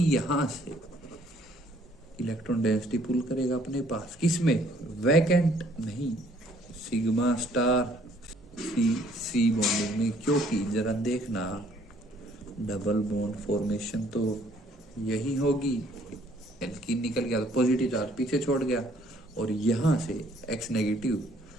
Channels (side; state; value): both; normal; correlation 0.62